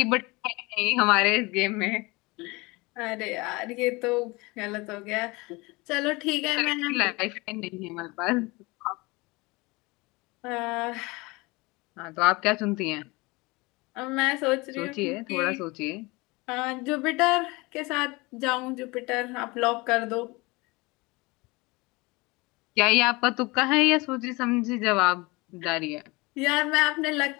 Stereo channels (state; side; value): quieter; right; 24.5 dB